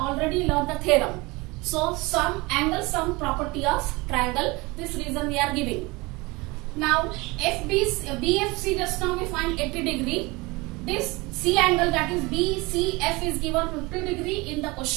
learned the theorem. So sum angle sum property of triangle, this reason we are giving. Now BFC just now we find 80 degree. This C angle, that is BCF, is given 50 degree in the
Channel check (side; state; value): left; quieter; 24.0 dB